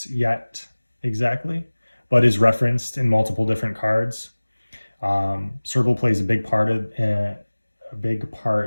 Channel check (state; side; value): inverted; both; correlation -1.00